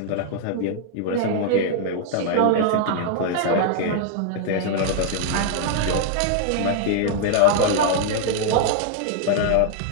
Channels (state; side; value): different; both; correlation 0.00